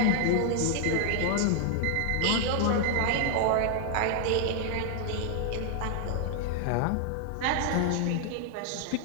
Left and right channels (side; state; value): both; different; correlation 0.00